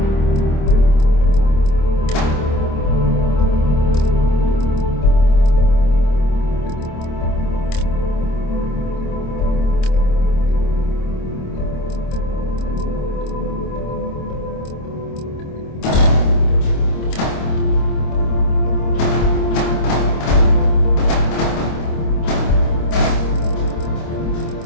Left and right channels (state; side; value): late; right; 26 ms